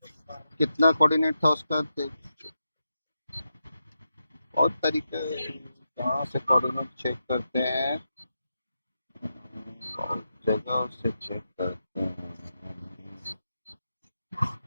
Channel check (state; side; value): inverted; both; correlation -0.87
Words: कितना कोऑर्डिनेट था उसका, और तरीके कहाँ से कोऑर्डिनेट चेक करते हैं, बहुत जगह से चेक करते हैं,